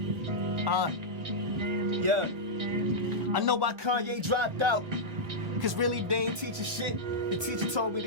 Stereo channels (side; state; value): left; late; 1.3 ms